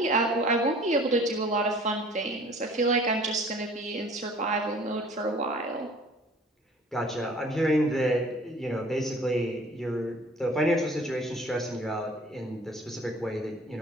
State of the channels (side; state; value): both; normal; correlation 0.50